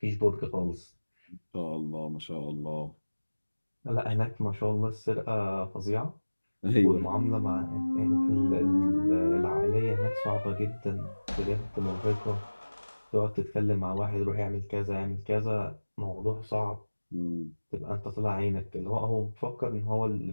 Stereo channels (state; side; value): inverted; both; correlation -1.00